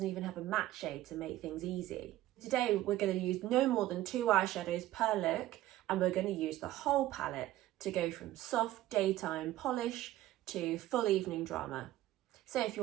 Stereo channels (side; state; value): left; quieter; 14.9 dB